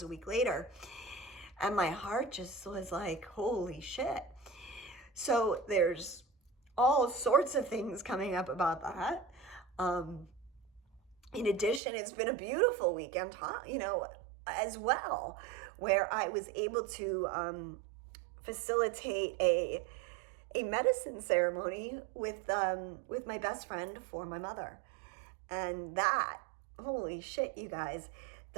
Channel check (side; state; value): left; drops out; at 11.8 s